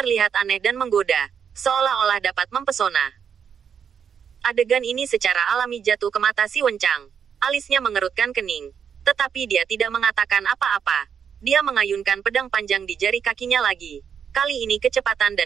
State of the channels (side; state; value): left; quieter; 7.5 dB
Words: aneh dan menggoda, seolah-olah dapat mempesona. Adegan ini secara alami jatuh ke mata si Wencang. Alisnya mengerutkan kening. Tetapi dia tidak mengatakan apa-apa. Dia mengayunkan pedang panjang di jari kakinya lagi. Kali ini kecepatan